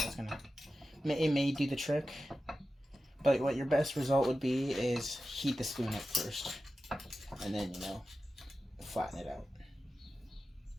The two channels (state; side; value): normal; both; correlation 0.93